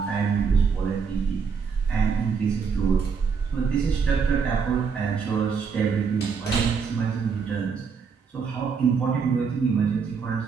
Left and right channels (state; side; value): quieter; left; 5.8 dB